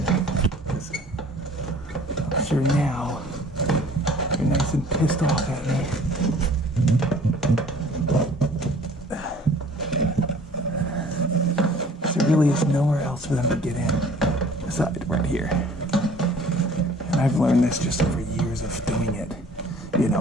I'm sure now you're nice and pissed off at me. There really is nowhere else for them to get in aside right here. And I've learned this just over years of doing it. You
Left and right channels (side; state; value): both; normal; correlation 0.52